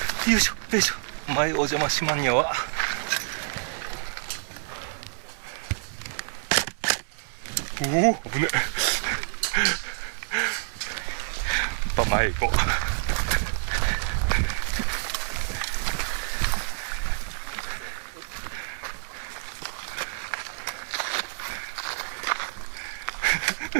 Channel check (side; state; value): left; silent; digital silence